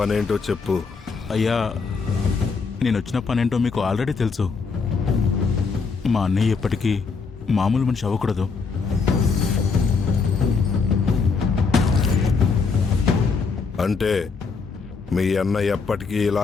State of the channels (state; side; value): quieter; right; 4.9 dB